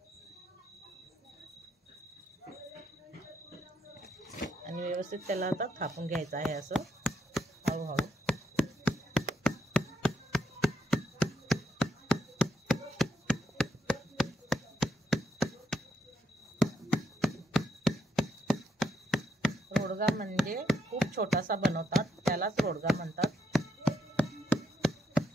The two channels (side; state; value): both; normal; correlation 0.78